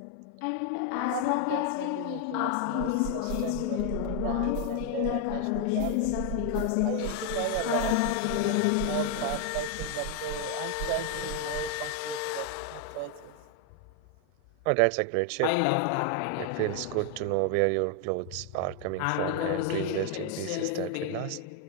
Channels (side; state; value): both; different; correlation 0.00